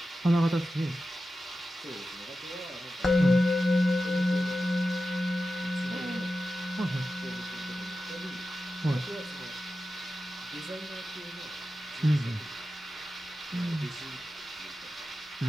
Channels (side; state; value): both; normal; correlation 0.92